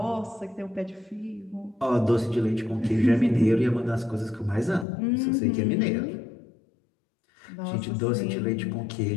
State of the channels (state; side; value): drops out; right; at 4.9 s